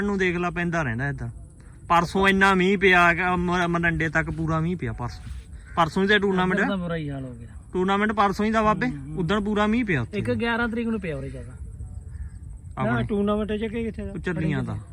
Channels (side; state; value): both; identical; correlation 1.00